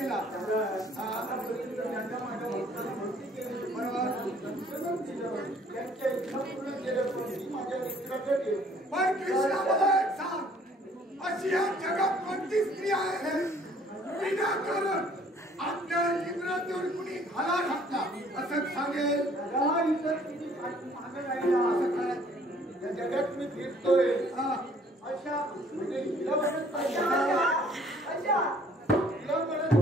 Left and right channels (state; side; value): normal; both; correlation 0.58